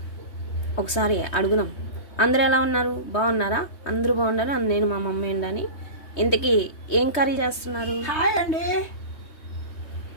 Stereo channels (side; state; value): right; late; 3.2 ms